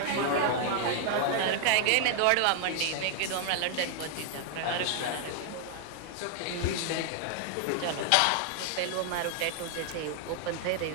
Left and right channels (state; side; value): different; both; correlation 0.00